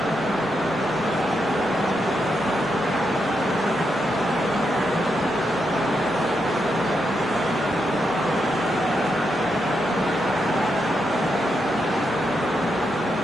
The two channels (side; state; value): both; normal; correlation 0.83